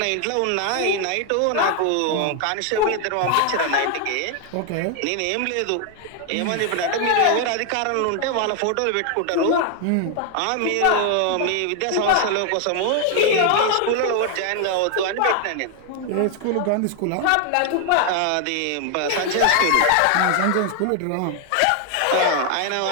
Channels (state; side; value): different; both; correlation 0.00